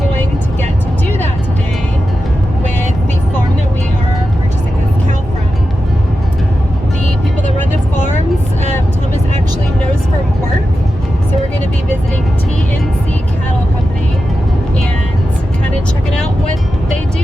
to get to do that today with the farm that we are purchasing this cow from. The people that run the farms, Thomas actually knows from work. So we're going to be visiting TNC Cattle Company and kind of checking out what they do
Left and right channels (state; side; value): normal; both; correlation 0.91